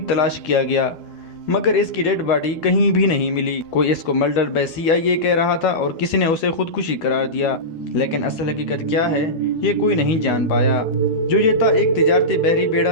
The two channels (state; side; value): late; right; 12 ms